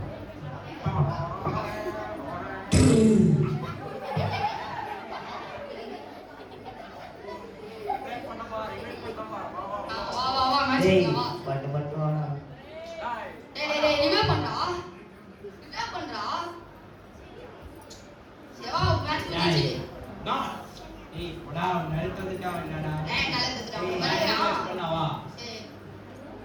வா வா வா மேட்ச் டேய் போடலாம் வா. பட்டு வாடா. டேய் ரிவைவ் பண்றா. ரிவைவ் பண்றா. சேவா மேட்ச் முடிஞ்சி. நான் ஏய் போடா நெருத்து வந்துட்டா என்னடா? ஏய் கலந்துடா. ஏய் வரடா. பண்ணவா? சரி.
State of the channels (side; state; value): both; identical; correlation 1.00